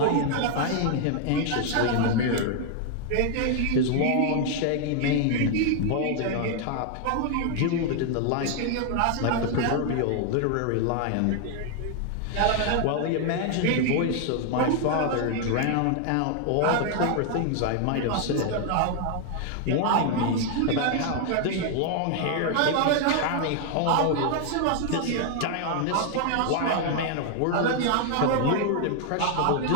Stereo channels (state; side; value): different; both; correlation 0.00